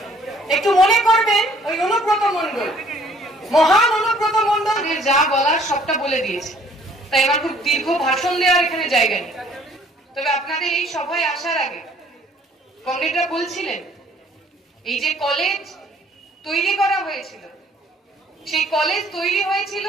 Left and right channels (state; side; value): normal; both; correlation 0.58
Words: একটু মনে করবেন ওই অনুব্রত মণ্ডল, মহান অনুব্রত মণ্ডল যা বলার সবটা বলে দিয়েছে। তাই আমার খুব দীর্ঘ ভাষণ দেওয়ার এখানে জায়গা নেই। তবে আপনাদের এই সভায় আসার আগে কমরেডরা বলছিলেন এই যে কলেজ তৈরি করা হয়েছিল, সেই কলেজ তৈরি হয়েছিল